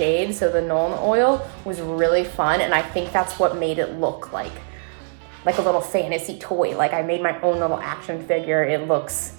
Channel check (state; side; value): silent; left; 58 dB below the other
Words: so the Nuln oil was really fun, and I think that's what made it look like a little fantasy toy. Like I made my own little action figure. It looks